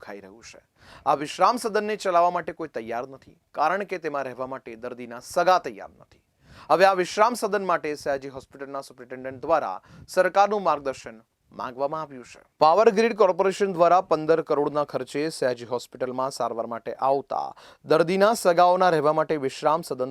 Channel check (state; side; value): identical; both; correlation 1.00